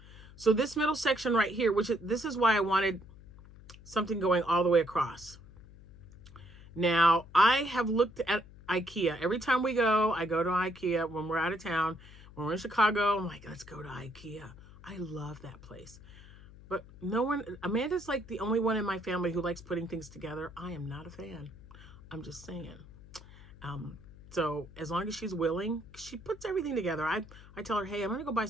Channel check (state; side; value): noise; left; hum, 19 dB below the sound